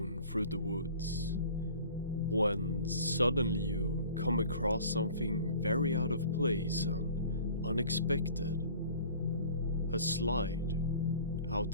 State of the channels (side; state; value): both; inverted; correlation -0.47